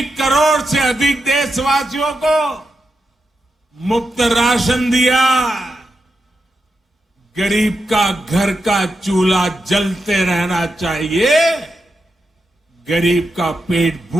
करोड़ से अधिक देशवासियों को मुफ्त राशन दिया। गरीब का घर का चूल्हा जलते रहना चाहिए, गरीब का पेट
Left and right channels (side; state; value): both; normal; correlation 0.87